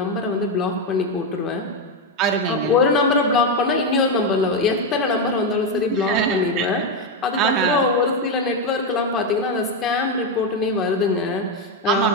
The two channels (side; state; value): both; normal; correlation 0.06